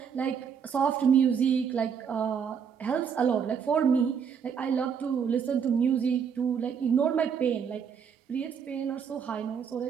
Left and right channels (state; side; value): quieter; left; 7.1 dB